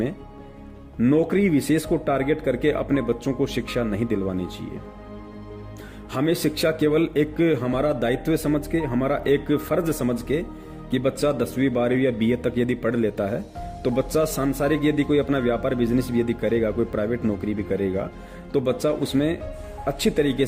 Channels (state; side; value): identical; both; correlation 1.00